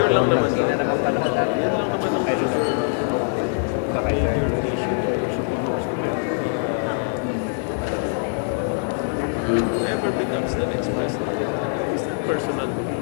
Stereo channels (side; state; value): right; silent; 61 dB below the other